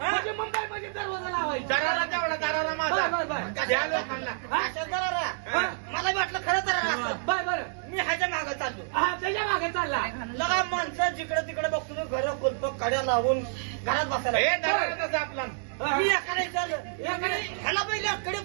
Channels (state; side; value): silent; left; digital silence